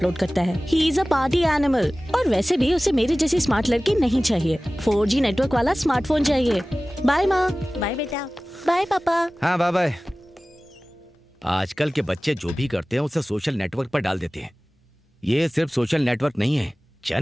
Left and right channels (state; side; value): normal; both; correlation 0.97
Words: करता है। He is a party animal. और वैसे भी उसे मेरी जैसी स्मार्ट लड़की नहीं चाहिए। 4G नेटवर्क वाला स्मार्टफोन चाहिए। बाय माँ। बाय बेटा। बाय पापा। हाँ, बाय बाय। आजकल के बच्चे जो भी करते हैं उसे सोशल नेटवर्क पर डाल देते हैं। ये सिर्फ सोशल नेटवर्क नहीं है,